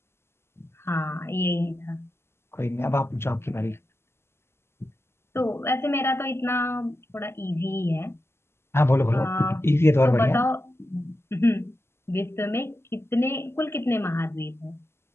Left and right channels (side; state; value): right; late; 0.12 ms